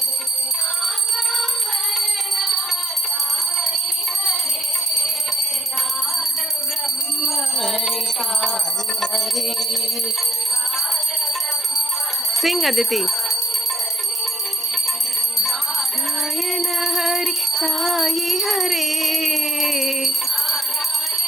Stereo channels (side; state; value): both; normal; correlation 0.67